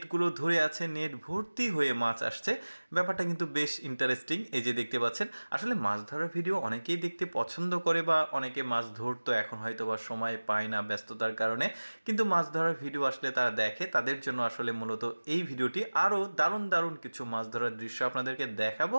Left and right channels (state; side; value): inverted; both; correlation -1.00